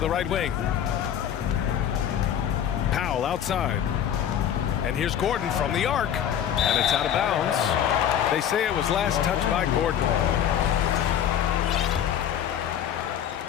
right wing. Powell outside. And here's Gordon from the arc. And it's out of bounds. They say it was last touched by Gordon.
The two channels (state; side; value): quieter; right; 9.7 dB